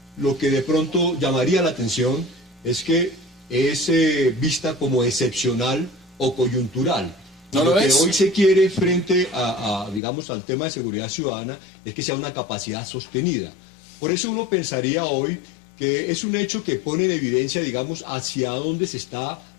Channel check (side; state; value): right; drops out; at 10.0 s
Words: Lo que de pronto llamaría la atención es que es vista como excepcional o coyuntural. ¿No lo lo que es? hoy se quiere frente digamos, al tema de seguridad ciudadana es que sea una capacidad sostenida. Por eso uno pensaría hoy que es un hecho que pone en evidencia, digamos, hacia dónde se está